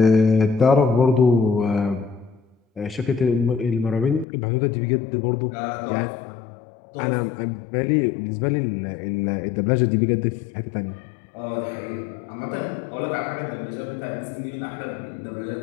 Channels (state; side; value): drops out; right; at 4.2 s